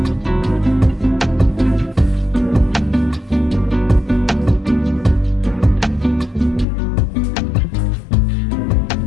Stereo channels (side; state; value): right; drops out; at 6.7 s